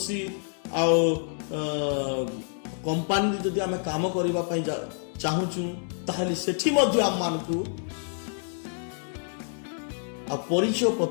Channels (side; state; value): right; silent; 60 dB below the other